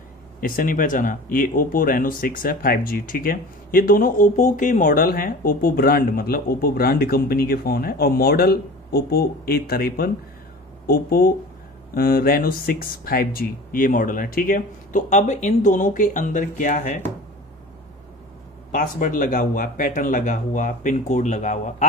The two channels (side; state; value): both; normal; correlation 0.38